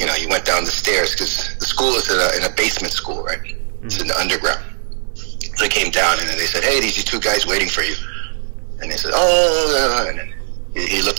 went down the stairs because the school is in a basement school, right? Mm-hmm. It's in the underground. So he came down, and then they said, hey, these are two guys waiting for you. And they said, oh, and then he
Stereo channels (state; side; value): silent; left; 60 dB below the other